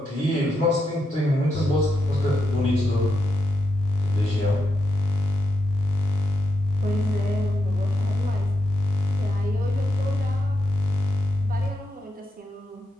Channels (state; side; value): normal; both; correlation 0.84